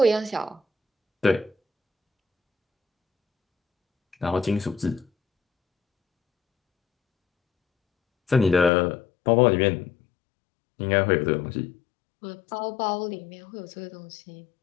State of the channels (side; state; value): right; drops out; at 8.7 s